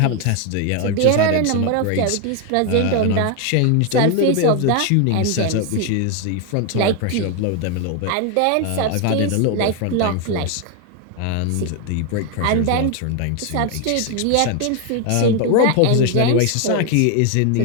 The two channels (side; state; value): both; different; correlation 0.01